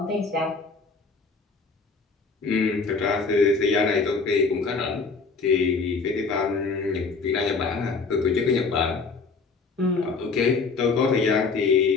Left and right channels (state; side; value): quieter; right; 4.5 dB